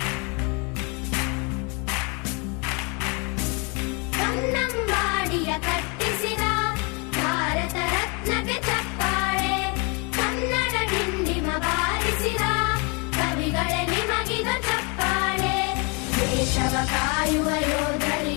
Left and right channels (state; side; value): quieter; right; 32.2 dB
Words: ಕನ್ನಂಬಾಡಿಯ ಕಟ್ಟಿಸಿದ ಭಾರತ ರತ್ನಕ್ಕೆ ಚಪ್ಪಾಳೆ, ಕನ್ನಡ ಡಿಂಡಿಮ ಬಾರಿಸಿದ ಕವಿಗಳೇ ನಿಮಗಿದ ಚಪ್ಪಾಳೆ. ದೇಶವ ಕಾಯುವ